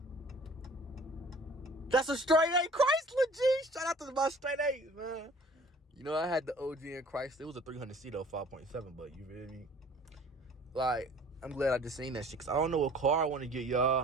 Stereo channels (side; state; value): both; normal; correlation 0.51